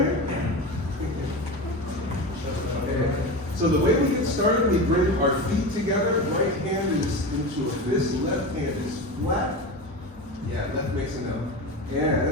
So the way we get started, we bring our feet together. Right hand is into a fist, left hand is flat. Yeah, left makes a note.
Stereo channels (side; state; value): both; normal; correlation 0.25